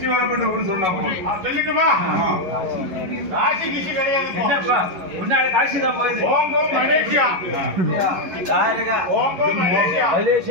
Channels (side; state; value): left; late; 11 ms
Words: வரப்பட்ட ஊர் சொன்னா சொல்லிட்டுமா? காசி கிசி கிடையாது. முன்னாடி காசி தான் போயிடுது. ஓங்கோ மலேசியா. ஓங்கோ மலேசியா.